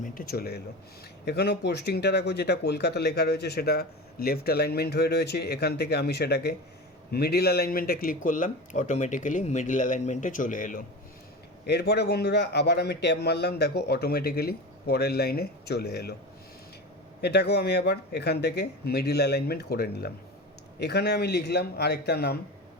চলে এলো। এখানেও পোস্টিংটা দেখো যেটা কলকাতা লেখা রয়েছে সেটা লেফট অ্যালাইনমেন্ট হয়ে রয়েছে, এখান থেকে আমি সেটাকে মিডিল অ্যালাইনমেন্টে ক্লিক করলাম, অটোমেটিক্যালি মিডিল অ্যালাইনমেন্টে চলে এলো। এরপরে বন্ধুরা আবার আমি ট্যাব মারলাম, দেখো অটোমেটিক্যালি পরের লাইনে চলে এলো। এটাকেও আমি আবার এখান থেকে মিডিল অ্যালাইনমেন্ট করে নিলাম। এখানে আমি লিখলাম আরেকটা নাম,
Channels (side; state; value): both; normal; correlation 0.28